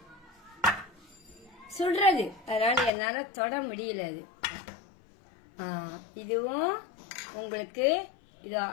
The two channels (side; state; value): right; drops out; at 2.9 s